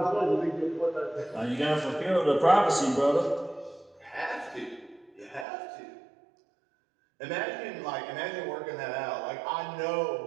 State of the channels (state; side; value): drops out; left; at 5.5 s